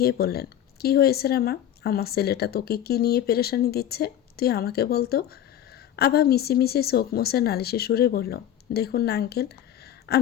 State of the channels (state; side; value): quieter; right; 10.9 dB